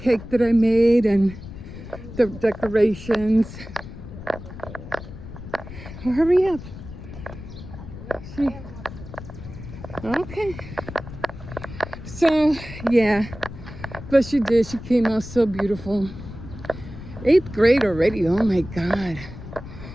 that I made and the decorations. Oh, hurry up. Okay. So, yeah. But she did. She came out so beautiful. 8th grade already. Oh, my God.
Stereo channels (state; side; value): noise; left; rumble, 13 dB below the sound